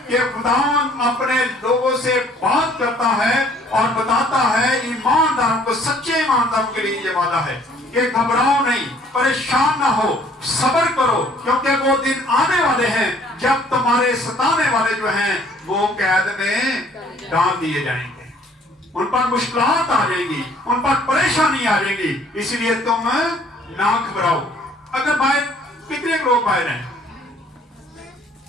कि खुदावंद अपने लोगों से बात करता है और बताता है ईमानदारों को, सच्चे ईमानदारों के लिए ये वादा है कि घबराओ नहीं, परेशान ना हो, सब्र करो, क्योंकि वो दिन आने वाले हैं जब तुम्हारे सताने वाले जो हैं वो कैद में डाल दिए जाएंगे, उन पर मुश्किलात आ जाएंगी, उन पर परेशानी आ जाएगी। इसलिए तुम ना घबराओ। अगर बाहर कितने लोग बाहर हैं,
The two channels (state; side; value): normal; both; correlation 0.58